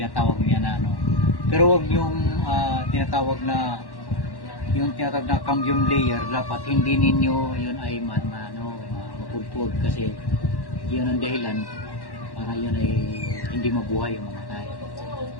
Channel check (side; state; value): right; late; 1.1 ms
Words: niya na pero wag yung tinatawag na cambium layer, dapat hindi ninyo yun ay mapugpog kasi yun ang dahilan para yun ay hindi mabuhay o mamatay.